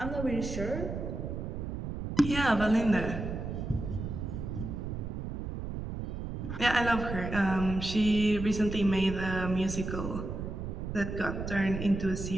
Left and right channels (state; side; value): noise; right; rumble, 5 dB below the sound